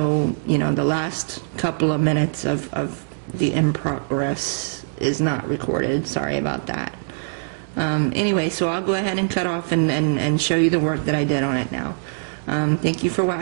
you know, the last couple of minutes of the in progress is not recorded. Sorry about that. Anyway, so I'll go ahead and cut off and show you the work that I did on it now. Thank you for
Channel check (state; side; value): silent; left; digital silence